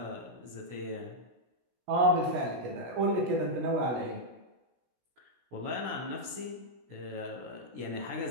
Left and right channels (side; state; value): left; late; 16 ms